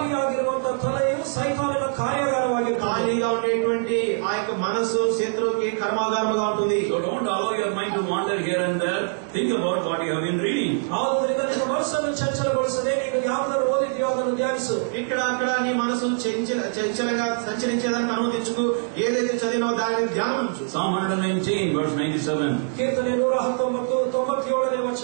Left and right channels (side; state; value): left; silent; digital silence